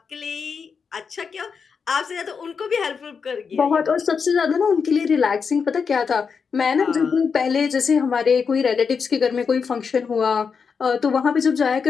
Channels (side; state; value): right; quieter; 5.8 dB